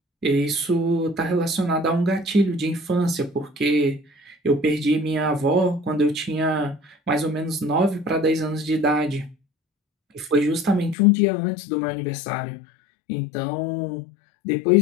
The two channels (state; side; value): drops out; right; at 11.0 s